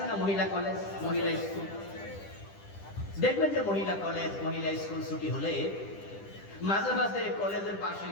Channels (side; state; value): right; late; 10 ms